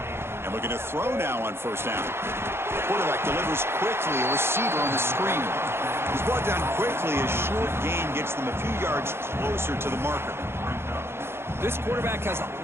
And looking to throw now on first down. The quarterback delivers quickly, a receiver on the screen. He's brought down quickly. A short gain gets them a few yards closer to the marker. This quarterback has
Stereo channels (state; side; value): late; left; 0.12 ms